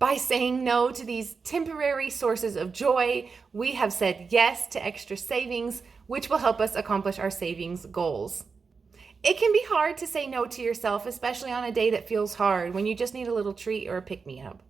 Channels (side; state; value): left; quieter; 5.0 dB